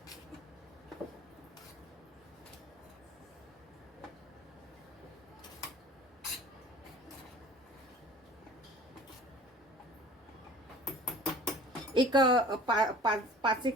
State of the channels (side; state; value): both; normal; correlation 0.45